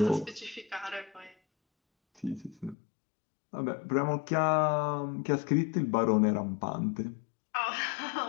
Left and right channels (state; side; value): drops out; right; at 2.8 s